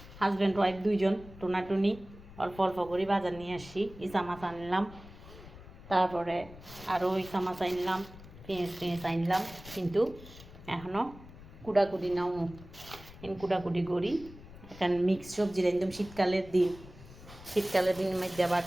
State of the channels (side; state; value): left; noise; rumble, 18 dB below the sound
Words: হাজব্যান্ড ওয়াইফ দুইজন টোনাটুনি অল্প অল্প করে বাজার নিয়ে আসি ইসা মাছ আনলাম, তারপরে আরও ইসা মাছ আনলাম, পেঁয়াজ আনলাম, কিন্তু এখনও কুড়াকুড়ি নাও কুটাকুটি করি। এখন মিক্স সবজি একদম শীতকালের দিন মধ্যে আবার